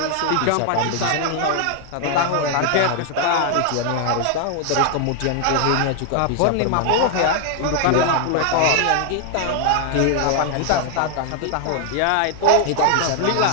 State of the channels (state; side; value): different; both; correlation 0.00